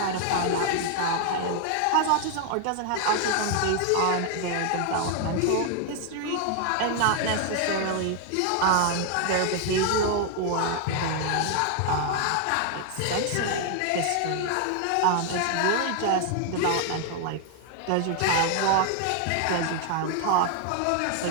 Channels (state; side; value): different; both; correlation 0.00